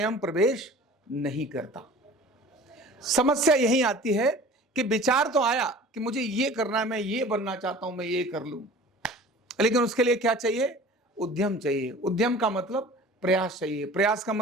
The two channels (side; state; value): both; normal; correlation 0.43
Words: प्रवेश नहीं करता। समस्या यही आती है कि विचार तो आया कि मुझे ये करना है, मैं ये बनना चाहता हूं, मैं ये कर लूं, लेकिन उसके लिए क्या चाहिए? उद्यम चाहिए। उद्यम का मतलब प्रयास चाहिए, प्रयास का